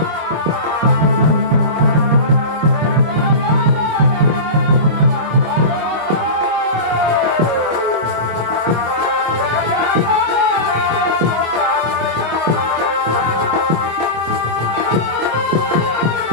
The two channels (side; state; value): left; late; 25 ms